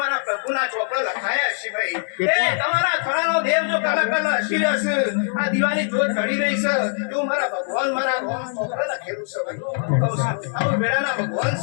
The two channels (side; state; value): right; silent; digital silence